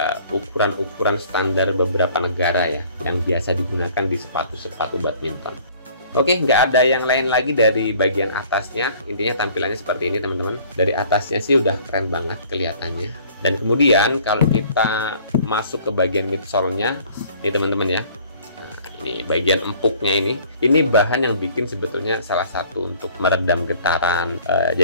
ukuran-ukuran standar beberapa negara ya yang biasa digunakan di sepatu-sepatu badminton. Oke, nggak ada yang lain lagi dari bagian atasnya. Intinya tampilannya seperti ini teman-teman. Dari atasnya sih udah keren banget kelihatannya. Dan kemudian kalau kita masuk ke bagian midsole-nya nih teman-teman ya, ini bagian empuknya ini bahan yang bikin sebetulnya salah satu untuk meredam getaran.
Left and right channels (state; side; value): inverted; both; correlation -0.53